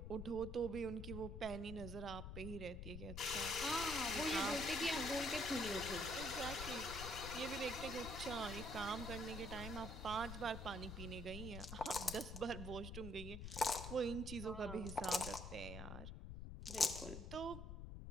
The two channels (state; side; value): noise; left; rumble, 7 dB below the sound